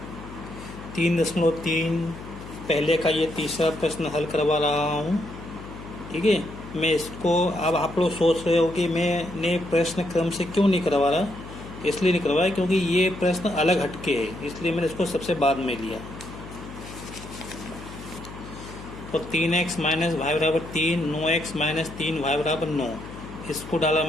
3.3 पहले का ये तीसरा प्रश्न हल करवा रहा हूँ। ठीक है, मैं इसको अब आप लोग सोच रहे हो कि मैंने प्रश्न क्रम से क्यों नहीं करवा रहा। इसलिए नहीं करवाया क्योंकि ये प्रश्न अलग हटके है, इसलिए मैंने इसको सबसे बाद में लिया। तो 3x माइनस वाई बराबर 3, 9x माइनस 3 वाई बराबर 9, इसको डाला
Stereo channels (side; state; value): left; noise; hum, 14 dB below the sound